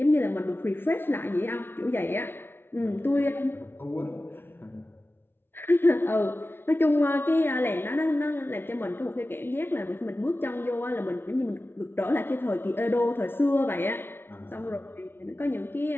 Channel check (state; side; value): late; right; 0.11 ms